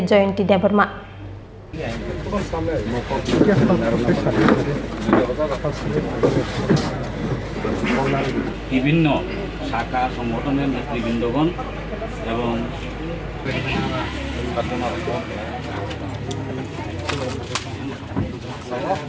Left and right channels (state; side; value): identical; both; correlation 1.00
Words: Joyanti Debarma বিভিন্ন শাখা সংগঠনের নেতৃবৃন্দগণ এবং